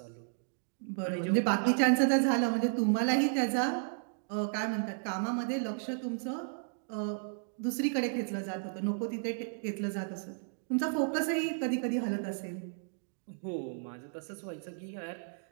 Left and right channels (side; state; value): left; silent; digital silence